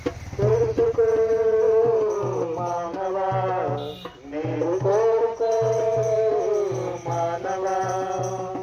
తెలుసుకో మానవా, నీవు కోరుకో మానవా.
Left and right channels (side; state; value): both; identical; correlation 1.00